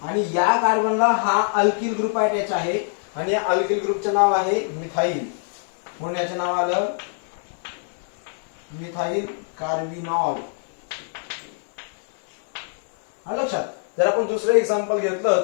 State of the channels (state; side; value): silent; right; digital silence